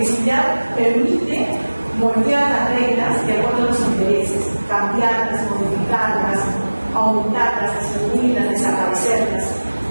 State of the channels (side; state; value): both; inverted; correlation -1.00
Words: permite moldear las reglas de acuerdo a los intereses, cambiarlas, modificarlas, aumentarlas, disminuirlas, desaparecerlas.